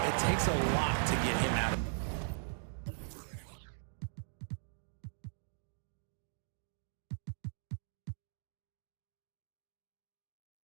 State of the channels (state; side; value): silent; left; digital silence